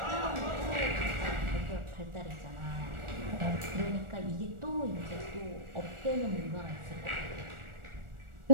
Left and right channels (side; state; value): left; late; 1.4 ms